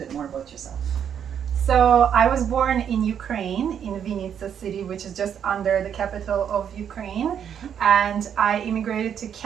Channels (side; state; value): left; quieter; 8.5 dB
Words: more about yourself. So I was born in Ukraine, in Vinnytsia city, which is just under the capital of Ukraine. And I immigrated to